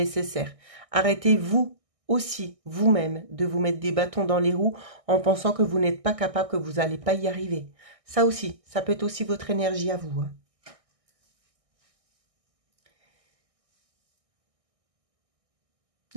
Arrêtez-vous aussi, vous-même, de vous mettre des bâtons dans les roues en pensant que vous n'êtes pas capable, que vous n'allez pas y arriver. Ça aussi, ça peut être aussi votre énergie à vous, hein.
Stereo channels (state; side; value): late; left; 1.6 ms